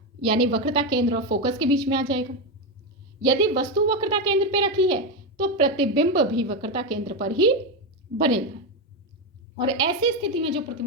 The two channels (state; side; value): normal; both; correlation 0.10